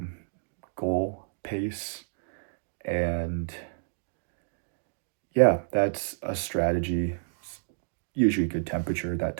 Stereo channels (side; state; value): left; silent; digital silence